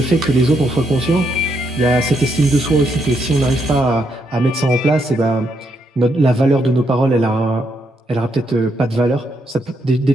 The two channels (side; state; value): both; normal; correlation 0.77